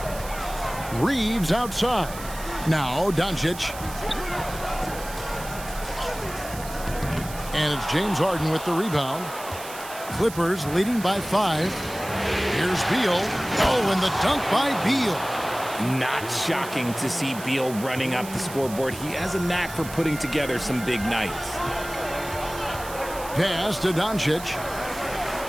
Reeves outside. Now Doncic. And it's James Harden with the rebound. Clippers leading by 5. Here's Beal. Oh, and the dunk by Beal. Not shocking to see Beal running up the scoreboard. He has a knack for putting together some big nights. Pass to Doncic.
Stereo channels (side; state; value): right; noise; hiss, 13 dB below the sound